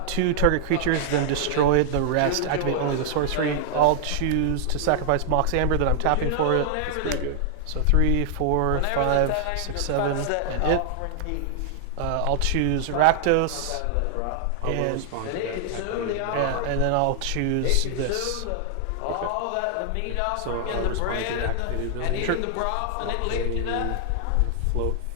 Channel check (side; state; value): both; different; correlation -0.01